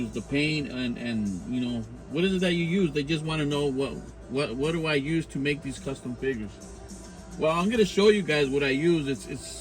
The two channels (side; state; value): both; identical; correlation 1.00